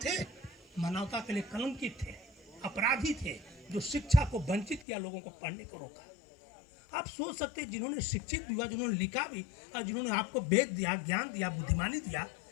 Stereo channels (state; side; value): drops out; right; at 4.9 s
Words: मानवता के लिए कलंकित थे, अपराधी थे, जो शिक्षा को वंचित किया, लोगों को पढ़ने को रोका। आप सोच सकते हैं जिन्होंने शिक्षित हुआ, जिन्होंने लिखा भी, और जिन्होंने आपको वेद दिया, ज्ञान दिया, बुद्धिमानी दिया,